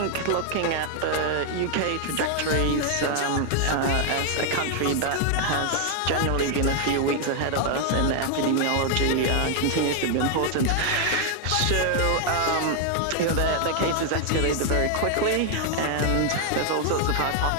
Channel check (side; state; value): both; different; correlation 0.00